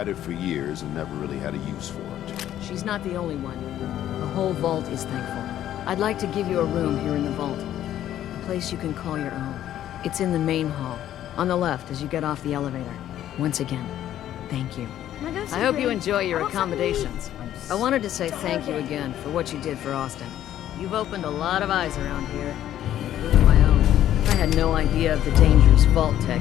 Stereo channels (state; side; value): quieter; right; 11.9 dB